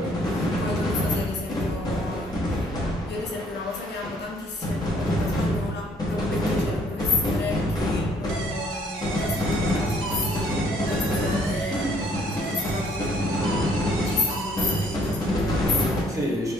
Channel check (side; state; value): both; normal; correlation 0.63